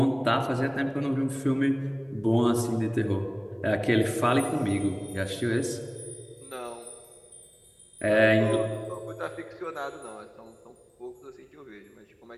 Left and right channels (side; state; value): both; identical; correlation 1.00